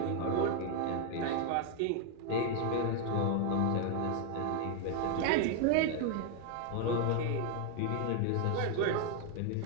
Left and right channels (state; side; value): different; both; correlation 0.00